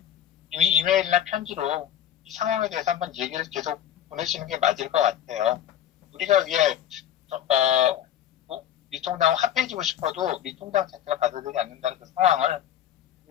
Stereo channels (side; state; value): right; quieter; 10.9 dB